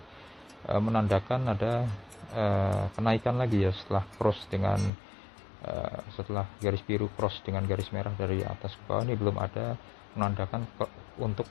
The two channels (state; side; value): drops out; right; at 4.9 s